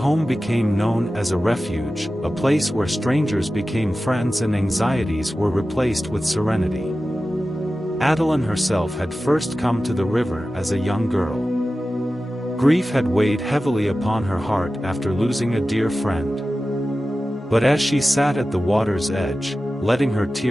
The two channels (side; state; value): both; normal; correlation 0.95